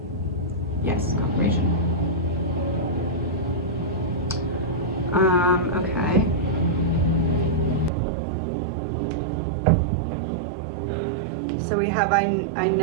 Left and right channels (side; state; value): left; drops out; at 7.9 s